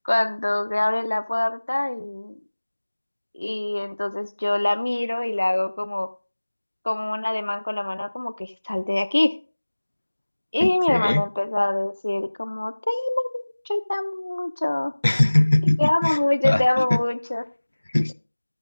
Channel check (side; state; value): both; inverted; correlation -1.00